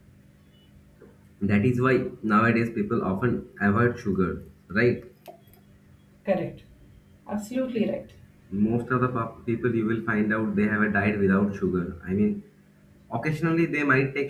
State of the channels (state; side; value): identical; both; correlation 1.00